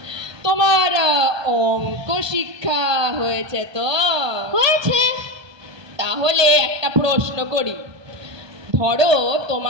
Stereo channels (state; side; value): late; left; 1.2 ms